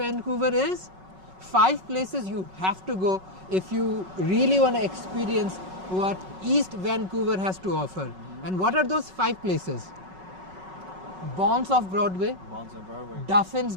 is? 5 places you have to go if you really want to experience what East Vancouver has to offer. And what are those 5 places? Bonds of Broadway, Duffin's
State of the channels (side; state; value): left; late; 5.4 ms